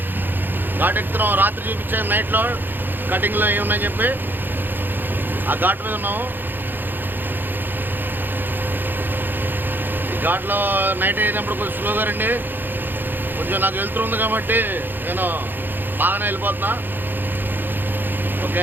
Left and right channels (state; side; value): late; left; 0.093 ms